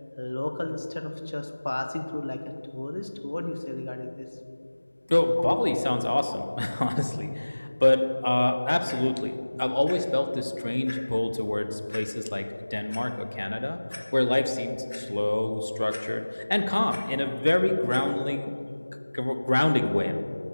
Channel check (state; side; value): inverted; both; correlation -1.00